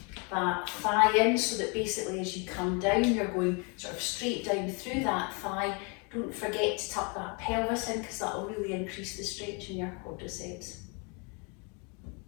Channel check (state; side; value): quieter; right; 33.6 dB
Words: that thigh in, so that basically as you come down, you're going sort of straight down through that thigh. Don't forget to tuck that pelvis in, because that will really increase the stretch in your quadriceps.